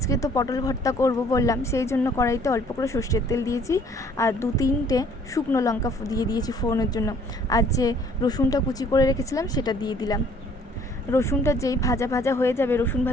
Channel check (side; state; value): both; normal; correlation 0.58